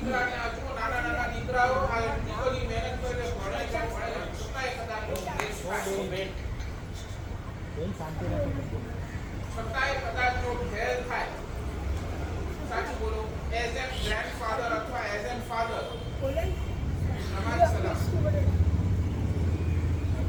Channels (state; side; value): identical; both; correlation 1.00